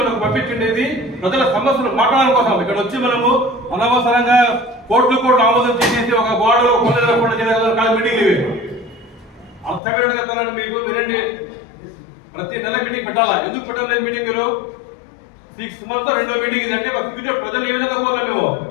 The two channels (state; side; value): drops out; right; at 9.8 s